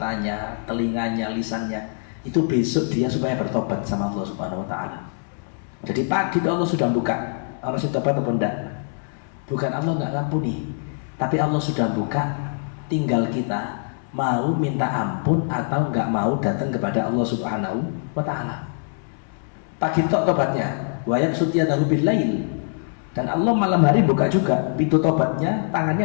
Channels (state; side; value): silent; right; 63 dB below the other